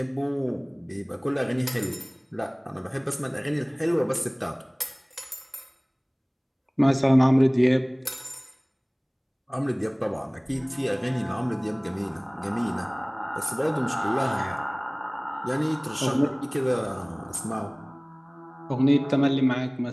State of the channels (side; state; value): both; identical; correlation 1.00